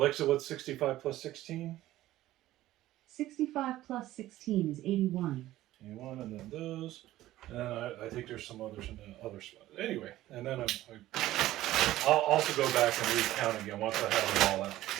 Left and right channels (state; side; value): quieter; left; 15.2 dB